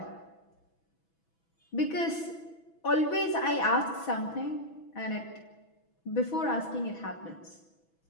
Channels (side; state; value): right; late; 6.1 ms